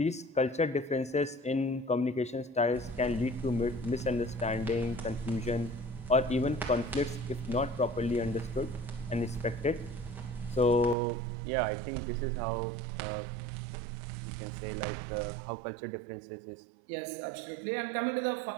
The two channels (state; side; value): drops out; left; at 11.0 s